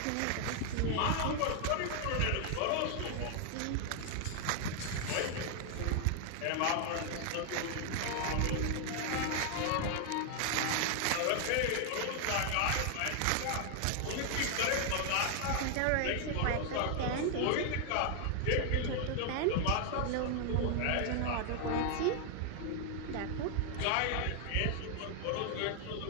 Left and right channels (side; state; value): both; different; correlation 0.00